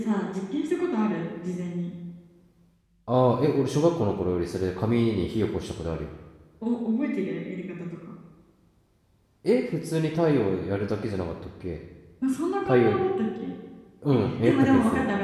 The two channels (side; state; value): both; identical; correlation 1.00